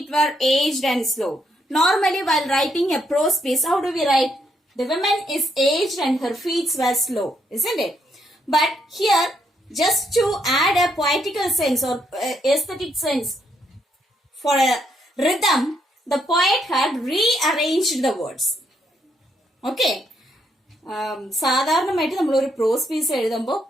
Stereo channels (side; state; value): both; normal; correlation 0.75